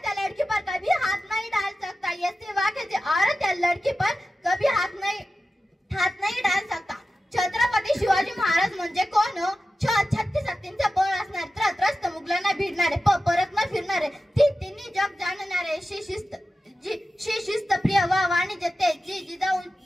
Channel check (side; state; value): both; normal; correlation 0.93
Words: या लड़की पर कभी हाथ नहीं डाल सकता. ये सिवा किसी औरत या लड़की पर कभी हाथ नहीं डाल सकता. छत्रपती शिवाजी महाराज म्हणजे कोण? 36 हत्तींचा बळ असणारे, त्रस्त मुघलांना भिडणारे, परत न फिरणारे, तिन्ही जग जाणणारे, शिस्त प्रिय व वाणिज्य तेज,